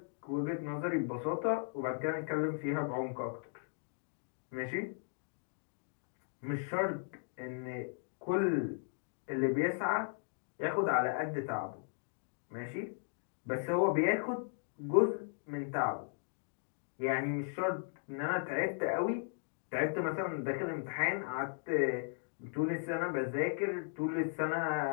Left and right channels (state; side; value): silent; right; digital silence